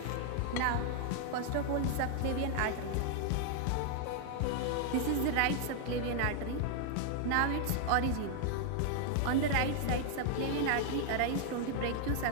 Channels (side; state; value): both; different; correlation 0.00